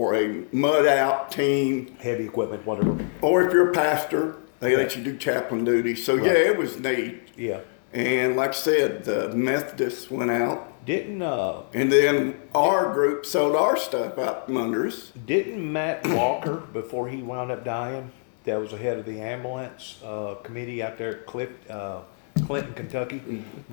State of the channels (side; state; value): right; silent; 62 dB below the other